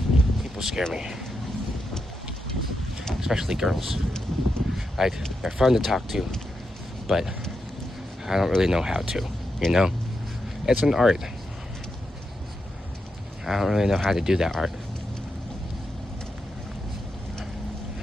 People scare me. Especially girls. Like, they're fun to talk to, but I don't really know how to, you know? It's an art. I don't really know how to do that art.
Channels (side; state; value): both; normal; correlation 0.86